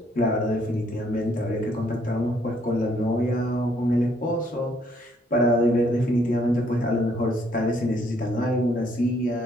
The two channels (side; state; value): both; normal; correlation 0.67